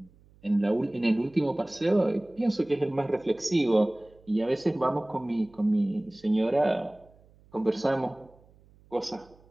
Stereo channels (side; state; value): right; noise; hum, 28 dB below the sound